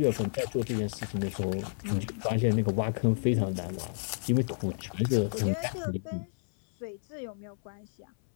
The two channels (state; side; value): silent; right; 56 dB below the other